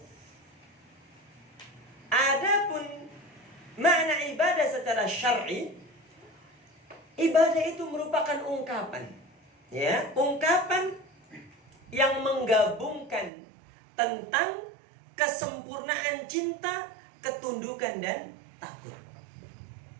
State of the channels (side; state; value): left; drops out; at 13.3 s